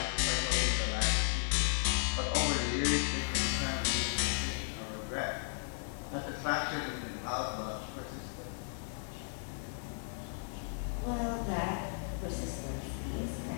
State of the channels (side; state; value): right; silent; digital silence